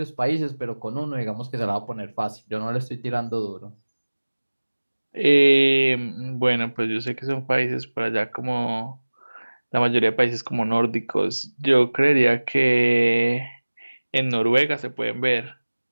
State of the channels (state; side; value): inverted; both; correlation -1.00